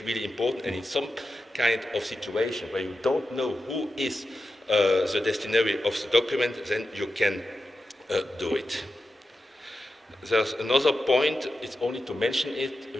really important, and in some kind of situation where you don't know who is the destinary of the document, then you can do it. There's another point, it's only to mention it,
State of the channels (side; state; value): both; normal; correlation 0.90